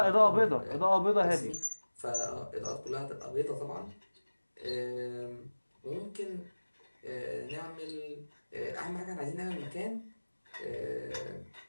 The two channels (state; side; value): inverted; both; correlation -1.00